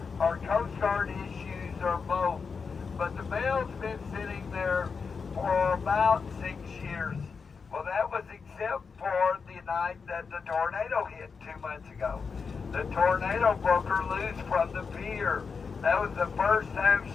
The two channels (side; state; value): right; quieter; 5.3 dB